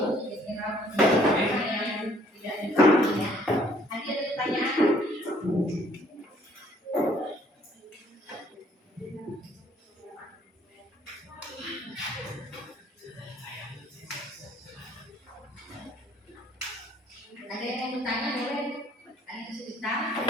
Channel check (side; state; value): both; normal; correlation 0.61